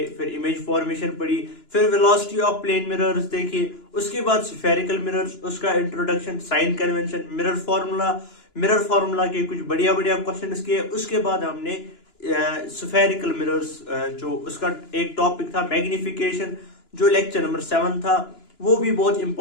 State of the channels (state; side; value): late; right; 2.9 ms